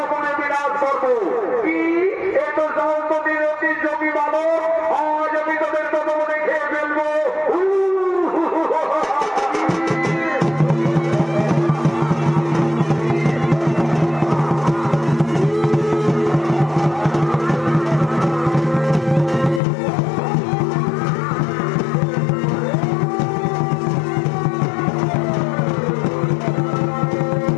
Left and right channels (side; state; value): right; drops out; at 19.6 s